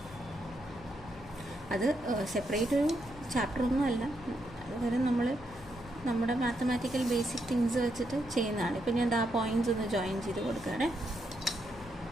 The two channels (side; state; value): left; noise; hum, 19 dB below the sound